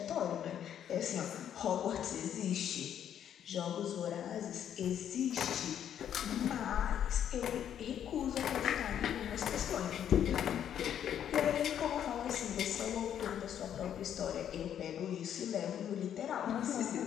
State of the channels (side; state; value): right; quieter; 9.7 dB